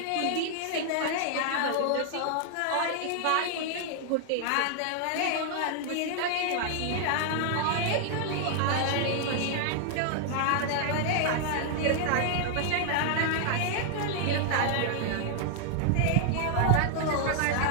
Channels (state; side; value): different; both; correlation 0.00